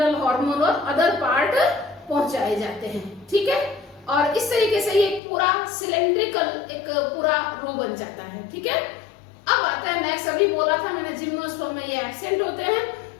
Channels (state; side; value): drops out; right; at 5.2 s